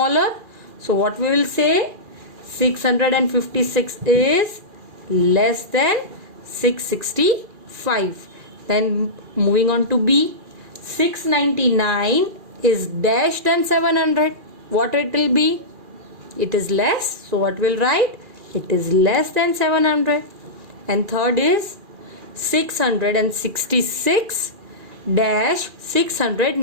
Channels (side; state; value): left; late; 2.4 ms